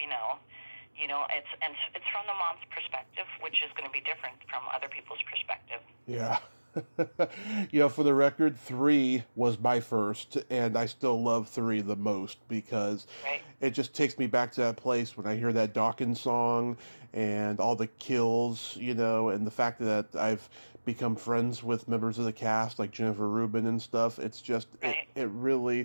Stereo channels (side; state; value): both; inverted; correlation -1.00